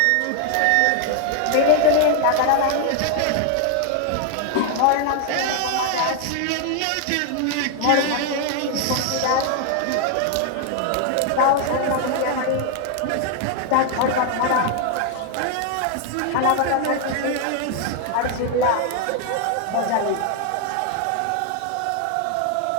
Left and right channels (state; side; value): different; both; correlation 0.00